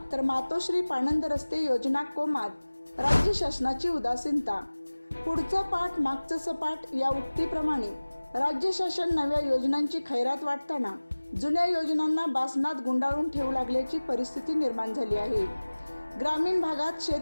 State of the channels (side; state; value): both; inverted; correlation -1.00